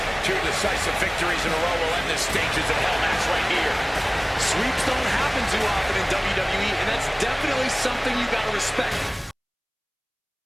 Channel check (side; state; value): both; identical; correlation 1.00